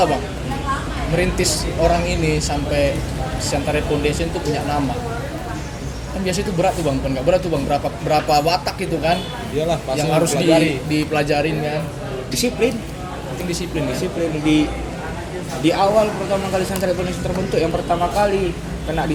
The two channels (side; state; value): both; identical; correlation 1.00